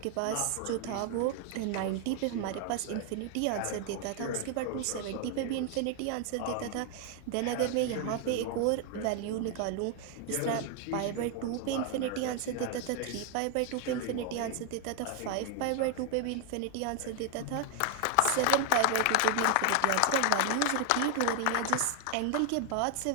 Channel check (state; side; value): different; both; correlation 0.00